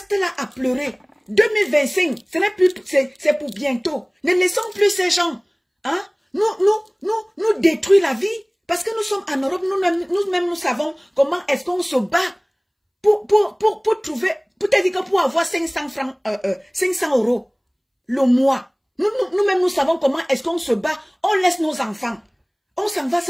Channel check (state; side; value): identical; both; correlation 1.00